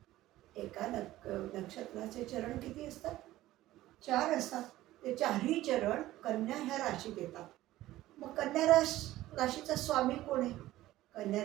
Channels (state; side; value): quieter; left; 15.7 dB